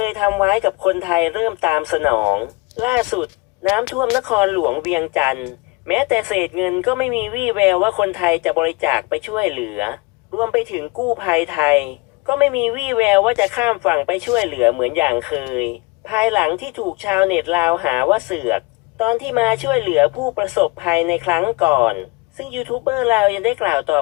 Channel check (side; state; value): right; quieter; 25.5 dB